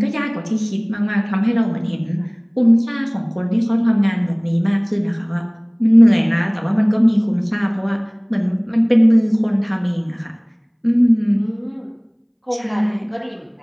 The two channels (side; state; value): both; identical; correlation 1.00